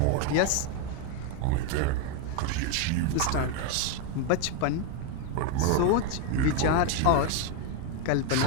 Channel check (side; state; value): both; different; correlation 0.01